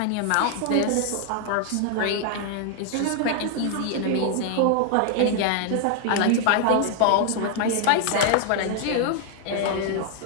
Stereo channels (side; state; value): both; different; correlation 0.00